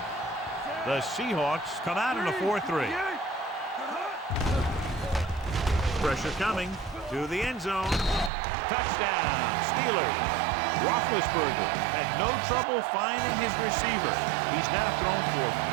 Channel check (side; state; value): left; drops out; at 8.3 s